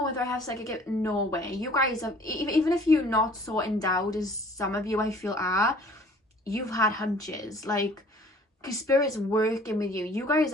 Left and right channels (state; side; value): normal; both; correlation 0.52